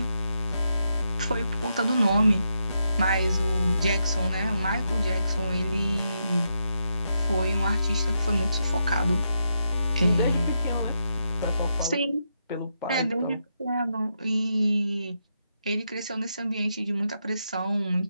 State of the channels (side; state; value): both; inverted; correlation -0.83